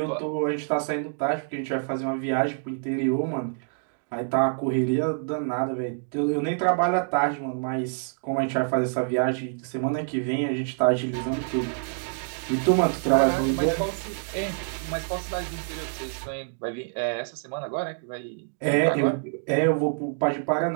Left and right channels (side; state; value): left; silent; digital silence